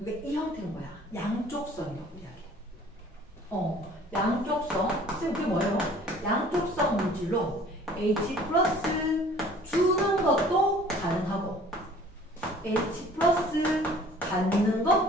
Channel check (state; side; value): normal; both; correlation 0.51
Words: 이 형태인 거야. 양쪽성이라고 이야기해. 양쪽성. 쌤 그게 뭐예요? 양쪽성 물질로 H 플러스 주는 것도 가능하고 H 플러스 받는